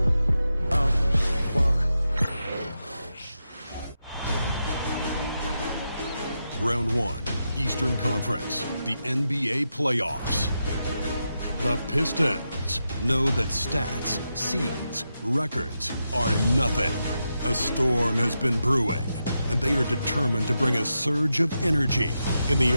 Walk. Round 1, Eastern Conference, the NBA playoffs. The Pistons know that stats, seeds, records are nothing. A storm has been brewing, and they are determined to bring a surge of energy in the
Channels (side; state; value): both; inverted; correlation -0.87